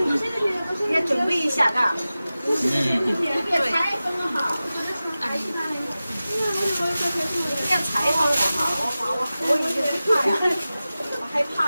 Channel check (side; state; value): both; inverted; correlation -0.96